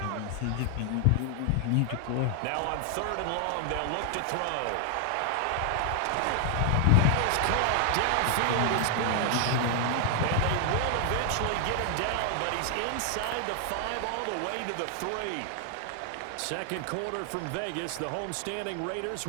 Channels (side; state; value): both; different; correlation 0.00